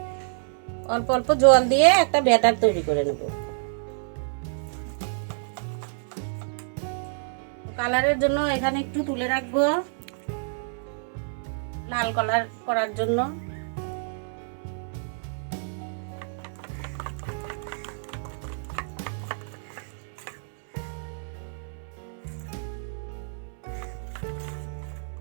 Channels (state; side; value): silent; left; 60 dB below the other